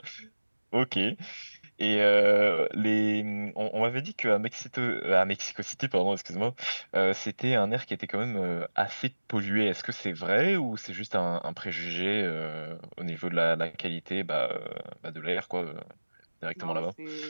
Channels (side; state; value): both; inverted; correlation -1.00